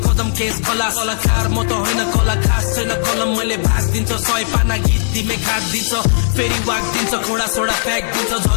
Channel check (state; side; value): silent; right; 66 dB below the other